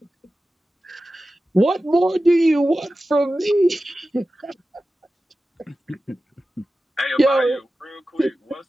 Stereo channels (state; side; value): normal; both; correlation 0.94